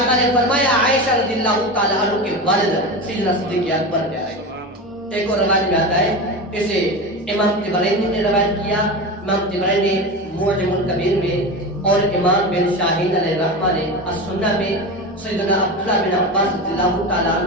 نے فرمایا عائشہ رضی اللہ تعالیٰ عنہ کے والد سیدنا صدیق اکبر پیارے ہیں۔ ایک اور روایت میں آتا ہے، اسے امام طبرانی نے روایت کیا، امام طبرانی معجم الکبیر میں، اور امام بن شاہین علیہ الرحمہ نے السنہ میں سیدنا عبداللہ بن عباس رضی اللہ تعالیٰ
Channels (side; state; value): both; normal; correlation 0.24